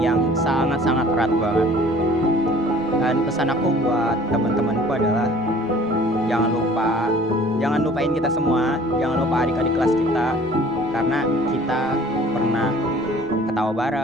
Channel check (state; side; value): normal; both; correlation 0.51